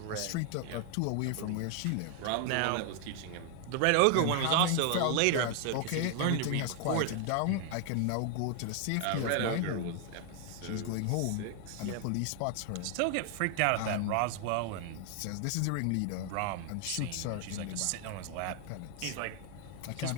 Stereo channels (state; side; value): different; both; correlation 0.00